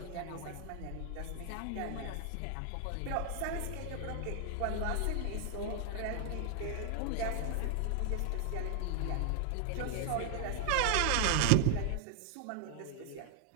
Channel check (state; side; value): different; both; correlation 0.00